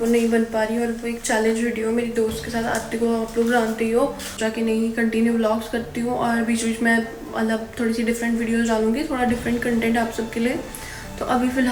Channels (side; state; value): both; identical; correlation 1.00